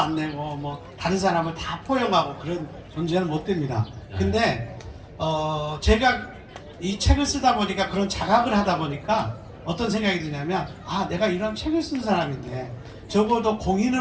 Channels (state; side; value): identical; both; correlation 1.00